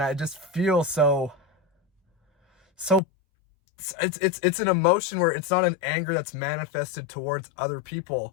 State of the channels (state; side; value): drops out; right; at 3.0 s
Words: I just feel so it's an emotion where it's not an anger that's manifested towards other